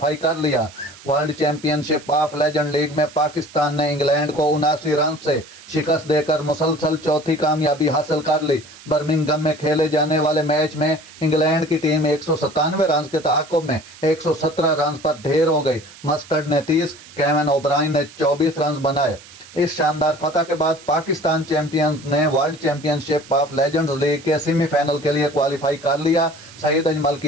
कर लिया। World championship of legend league में पाकिस्तान ने इंग्लैंड को 79 रन से शिकस्त देकर मुसलसल चौथी कामयाबी हासिल कर ली। बर्मिंघम में खेले जाने वाले मैच में इंग्लैंड की टीम 197 रन के ताक़ुब में 117 रन पर ढेर हो गई। मस्टर्ड ने 30, केविन ओब्रायन ने 24 रन बनाए। इस शानदार फतह के बाद पाकिस्तान चैंपियंस ने world championship of legends league के सेमीफाइनल के लिए क्वालिफाई कर लिया। सईद अजमल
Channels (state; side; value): noise; right; hiss, 20 dB below the sound